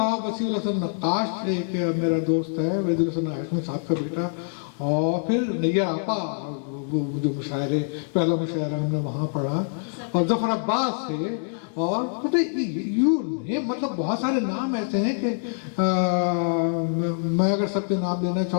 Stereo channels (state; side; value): silent; right; digital silence